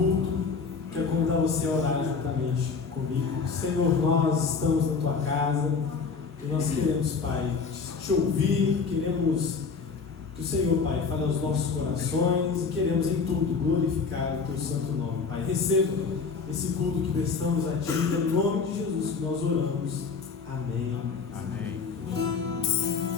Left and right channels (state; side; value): quieter; right; 5.1 dB